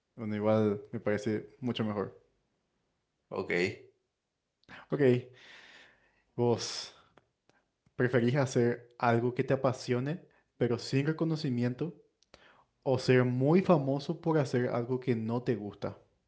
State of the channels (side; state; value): both; identical; correlation 1.00